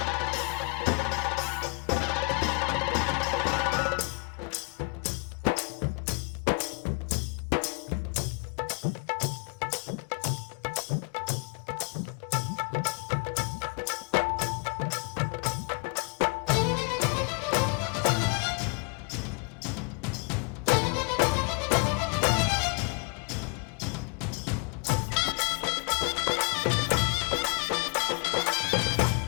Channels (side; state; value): right; quieter; 34.8 dB